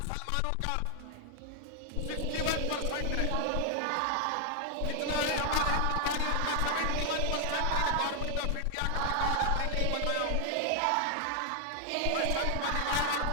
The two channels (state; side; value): different; both; correlation 0.00